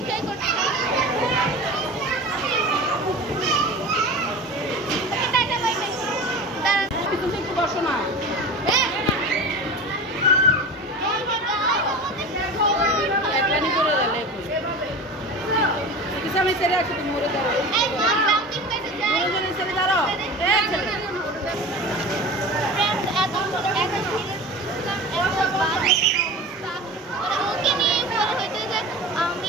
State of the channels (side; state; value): both; normal; correlation 0.33